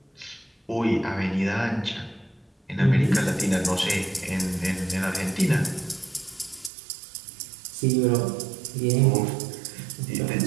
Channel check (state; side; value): drops out; left; at 6.7 s